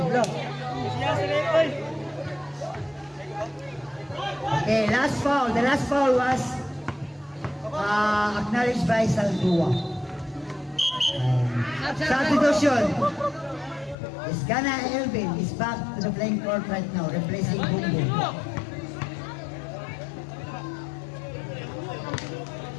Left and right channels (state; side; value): drops out; right; at 14.0 s